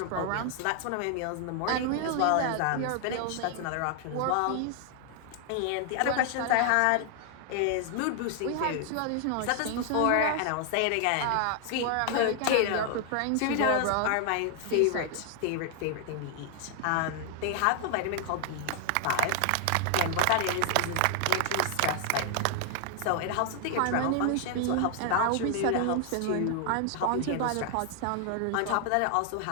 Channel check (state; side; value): different; both; correlation 0.00